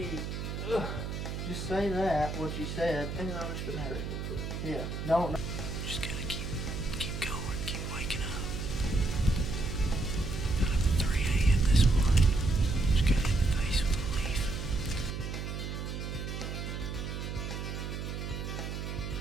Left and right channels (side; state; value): right; noise; hum, 5 dB below the sound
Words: Just say that what you said. And I was gonna have it. Yeah. No.